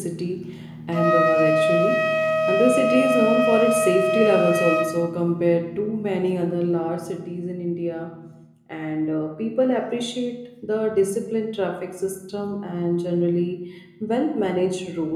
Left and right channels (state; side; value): identical; both; correlation 1.00